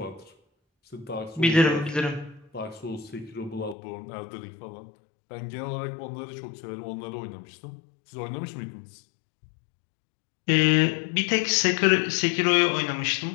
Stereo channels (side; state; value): right; drops out; at 3.8 s